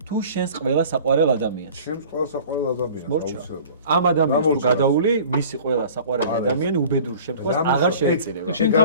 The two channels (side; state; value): both; inverted; correlation -0.45